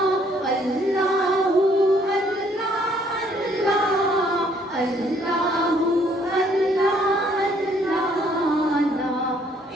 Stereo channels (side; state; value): both; normal; correlation 0.64